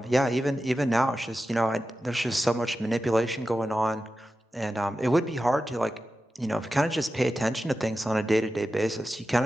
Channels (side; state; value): both; normal; correlation 0.92